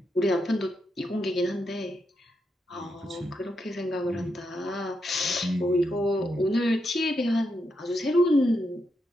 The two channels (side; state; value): both; normal; correlation 0.83